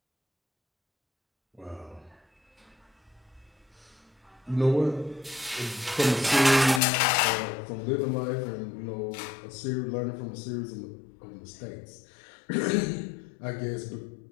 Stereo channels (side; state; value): right; drops out; at 6.8 s